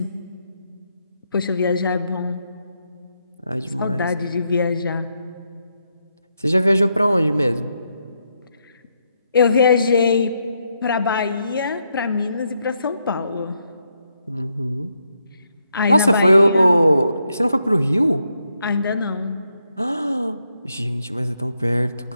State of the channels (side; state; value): both; inverted; correlation -0.80